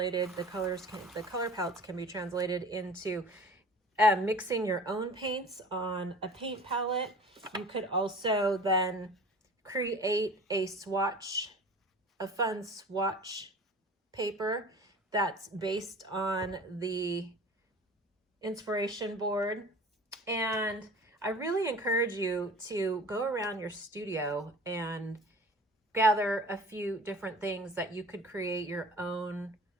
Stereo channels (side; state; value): both; normal; correlation 0.42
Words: The color palettes can be translated into mixing your own paints on a paint palette. You could also then create a fun swatch paper that's based on the inspiration board. And I really encourage you to go around your studio and gather a few different things that you could create your own